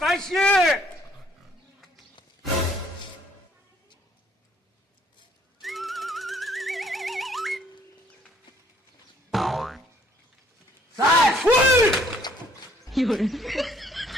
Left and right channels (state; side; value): normal; both; correlation 0.62